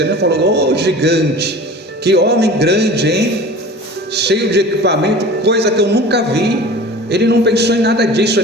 Ele não falou, gigante, que homem grande, hein? Cheio de equipamento, coisa que eu nunca vi. Ele não pensou em nada disso.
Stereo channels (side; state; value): both; normal; correlation 0.39